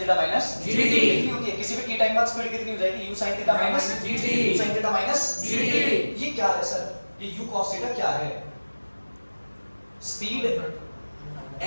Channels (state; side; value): inverted; both; correlation -1.00